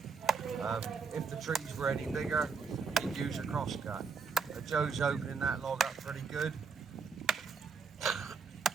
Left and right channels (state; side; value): quieter; left; 5.4 dB